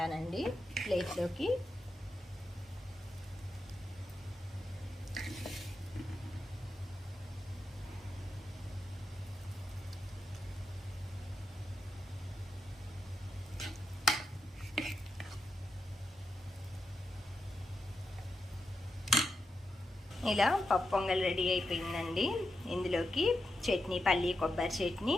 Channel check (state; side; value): normal; both; correlation 0.86